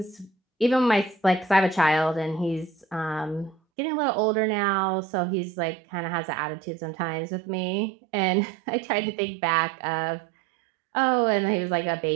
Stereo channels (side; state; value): left; drops out; at 3.6 s